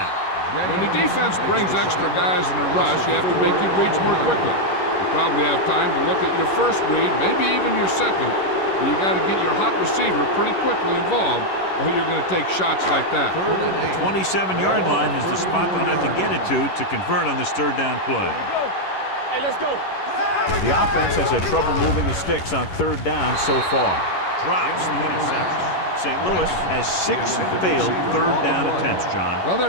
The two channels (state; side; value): late; right; 11 ms